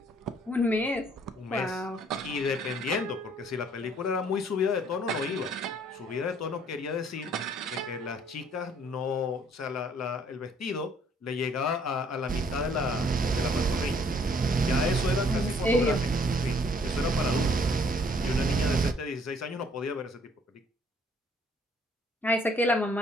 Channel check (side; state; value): both; normal; correlation 0.61